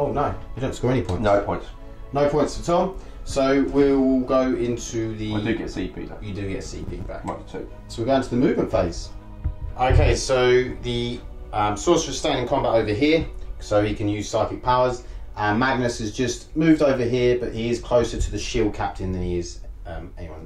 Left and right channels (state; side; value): identical; both; correlation 1.00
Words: no, you don't score any points. No points. No points for Tom. So we'll go into the. I do get CP though. You do get CP back. 2. So we're going to the movement phase. Okay, so the sorcerer's staying in combat over here, so he can use psychic powers. Magnus has just moved over here, but he is closer to the shield captain than he is